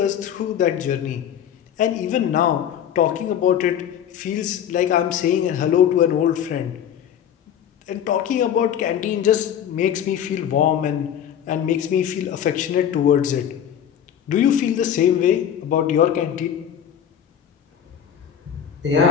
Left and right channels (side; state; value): right; quieter; 9.3 dB